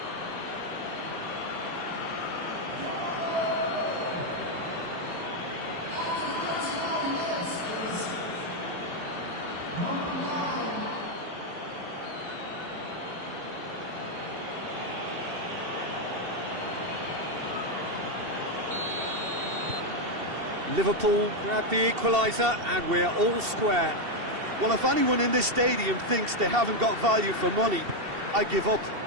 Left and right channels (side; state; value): left; late; 2.7 ms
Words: Liverpool grab the equaliser and we're all square. Well, if anyone in this stadium thinks they haven't got value for money, I give up.